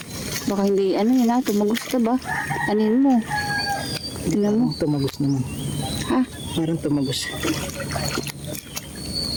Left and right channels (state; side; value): identical; both; correlation 1.00